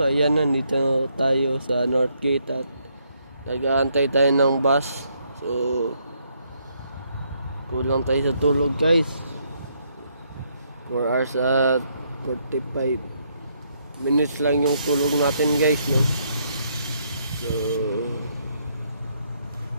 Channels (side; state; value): both; inverted; correlation -0.73